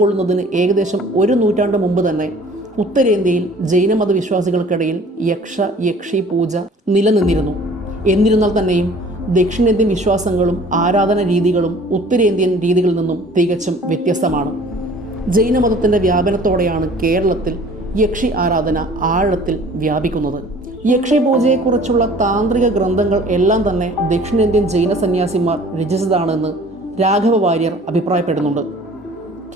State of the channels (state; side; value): normal; both; correlation 0.50